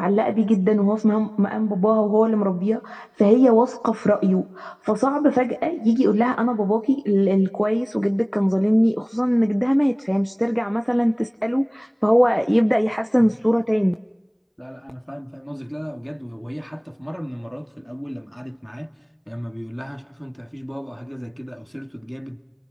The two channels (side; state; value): both; identical; correlation 1.00